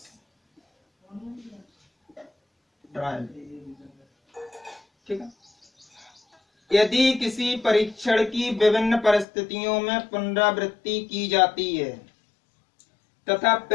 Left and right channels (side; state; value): right; drops out; at 9.2 s